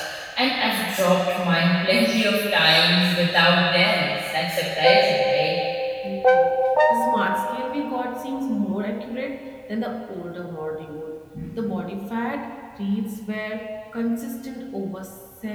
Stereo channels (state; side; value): identical; both; correlation 1.00